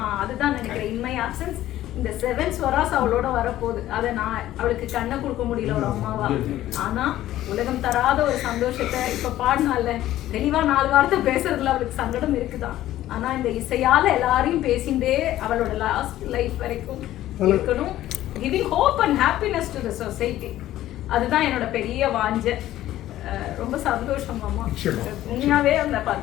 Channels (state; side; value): quieter; right; 14.0 dB